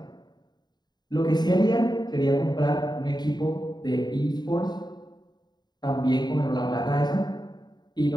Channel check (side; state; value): right; late; 0.20 ms